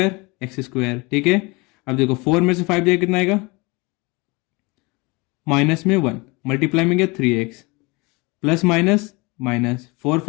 x स्क्वायर। ठीक है, अब देखो 4 में से 5 जाएगा कितना आएगा? माइनस में 1, मल्टीप्लाई में गया 3x, प्लस माइनस माइनस, 4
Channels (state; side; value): quieter; right; 26.2 dB